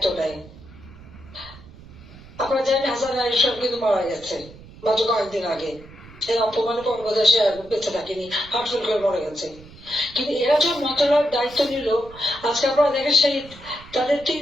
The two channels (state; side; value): noise; right; rumble, 20 dB below the sound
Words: নেয়। আপনারা জানেন হাসান আরিফ সাহেব কিন্তু মারা গেছে মাত্র কয়েকদিন আগে, এই অপমানের পর বোধহয় সে বেঁচে থাকেনি, হার্টফেল করে মরে গেছে। কিন্তু এরা যখন মন্ত্রণালয়ের দায়িত্ব নিল, আজকে আপনারা দেখেন সেই তাদের